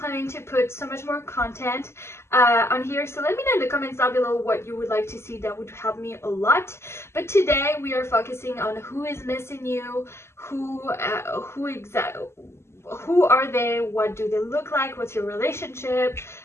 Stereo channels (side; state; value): right; late; 0.13 ms